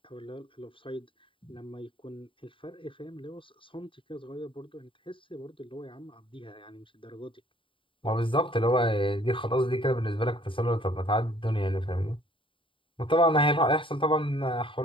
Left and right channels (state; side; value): late; right; 0.25 ms